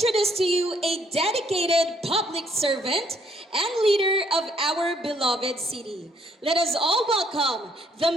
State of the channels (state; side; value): normal; both; correlation 0.67